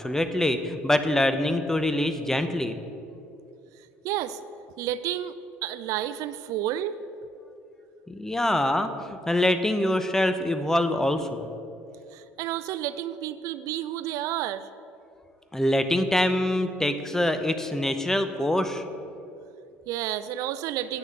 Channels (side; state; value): both; normal; correlation 0.75